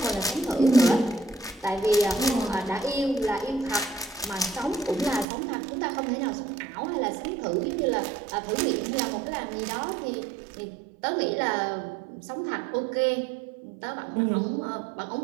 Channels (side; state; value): left; drops out; at 5.2 s